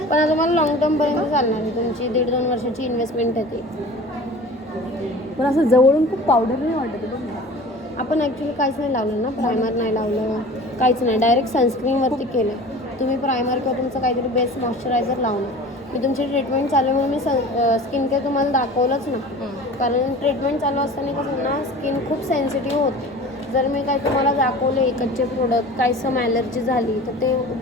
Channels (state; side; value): normal; both; correlation 0.40